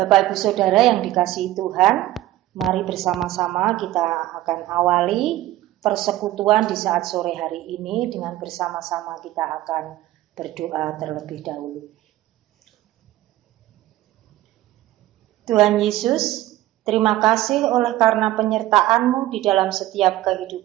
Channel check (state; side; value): quieter; left; 15.3 dB